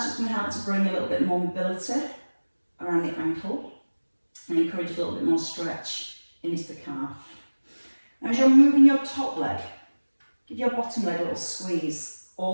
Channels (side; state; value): both; inverted; correlation -1.00